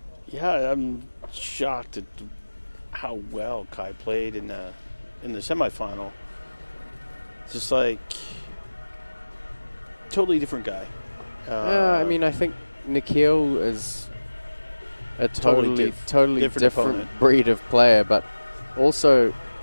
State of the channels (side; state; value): both; inverted; correlation -1.00